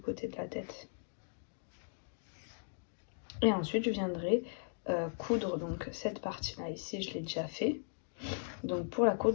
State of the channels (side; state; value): right; silent; digital silence